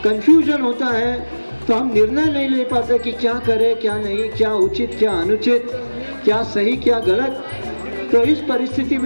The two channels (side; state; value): both; inverted; correlation -1.00